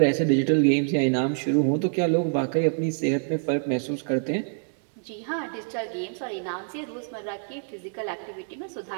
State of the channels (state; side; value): silent; left; digital silence